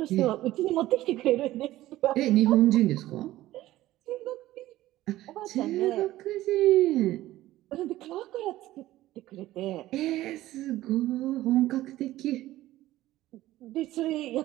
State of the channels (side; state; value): left; quieter; 15.7 dB